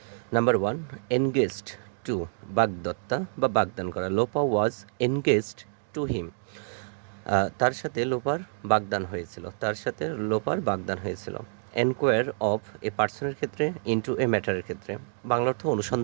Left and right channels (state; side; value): silent; left; digital silence